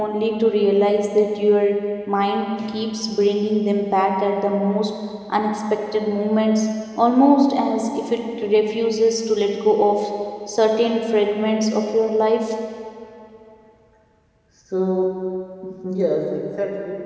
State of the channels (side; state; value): both; identical; correlation 1.00